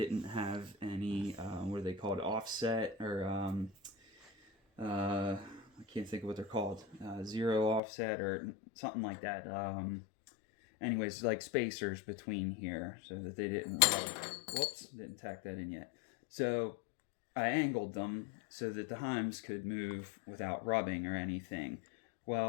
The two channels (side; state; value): right; drops out; at 7.8 s